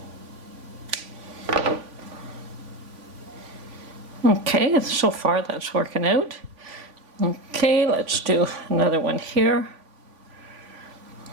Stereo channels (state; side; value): late; left; 3.5 ms